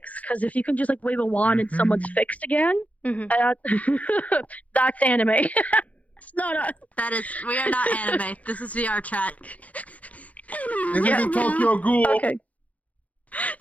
Because if you can just like wave a wand and someone's fixed again, that's anime. It's not us. That is, we are not anime. This is VR chat. This isn't Tokyo Ghoul. Okay.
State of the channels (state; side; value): late; right; 0.070 ms